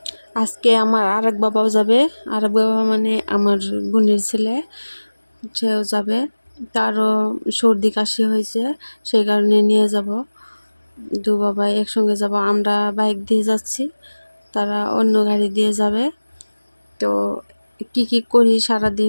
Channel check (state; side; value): inverted; both; correlation -1.00